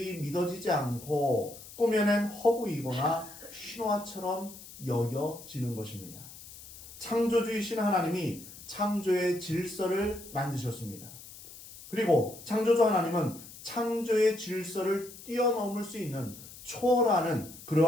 믿어지지 않고 꾸며낸 허구이거나 신화처럼 여겨지는 것입니다. 창조주이신 하나님이 창조의 질서를 만드셨습니다. 그리고 창조주 하나님은 창조의 질서를 뛰어넘을 수 있는 초월하는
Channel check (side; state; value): left; noise; hiss, 16 dB below the sound